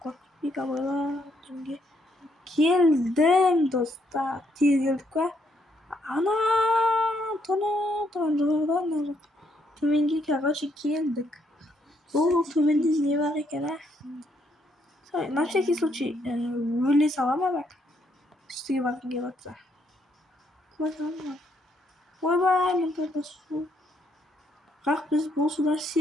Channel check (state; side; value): normal; both; correlation 0.73